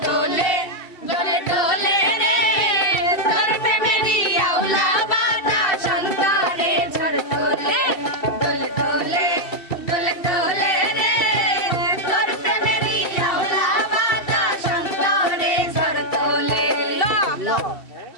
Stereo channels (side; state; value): right; late; 2.7 ms